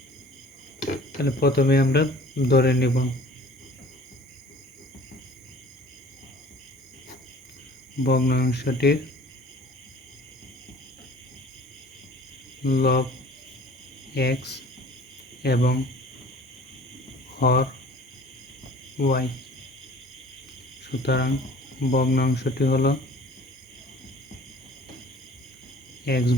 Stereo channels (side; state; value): both; normal; correlation 0.48